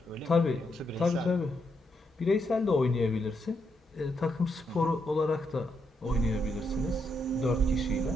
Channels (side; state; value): both; normal; correlation 0.80